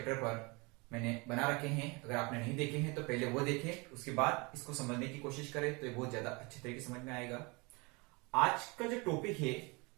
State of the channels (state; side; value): quieter; left; 27.7 dB